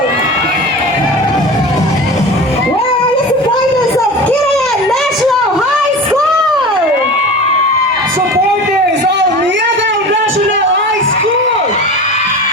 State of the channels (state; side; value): normal; both; correlation 0.34